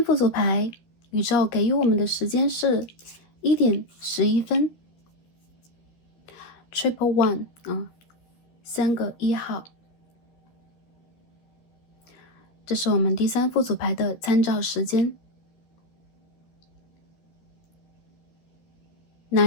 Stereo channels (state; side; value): late; right; 13 ms